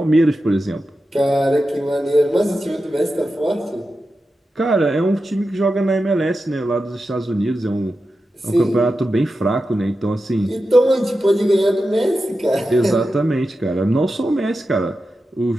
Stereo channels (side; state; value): both; normal; correlation 0.91